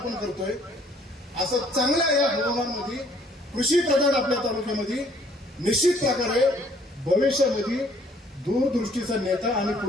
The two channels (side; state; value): both; normal; correlation 0.61